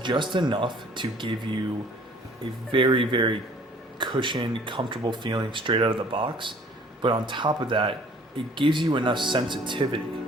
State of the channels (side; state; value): both; normal; correlation 0.54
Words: enough to give you a very cushioned, comfortable feeling straight out of the box. But on top of that, it gives you enough sensitivity